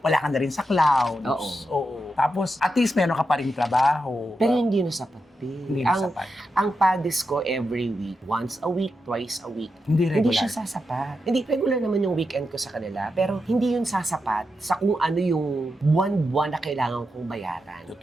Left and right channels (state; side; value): normal; both; correlation 0.87